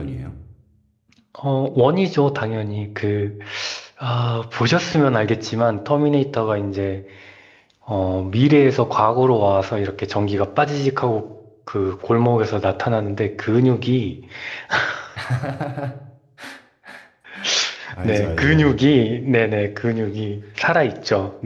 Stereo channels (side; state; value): both; identical; correlation 1.00